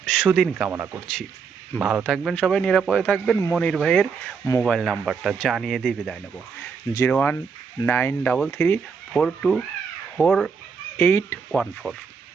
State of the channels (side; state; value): left; quieter; 5.8 dB